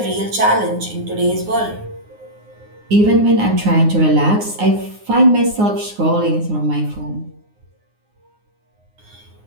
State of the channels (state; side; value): late; left; 9.6 ms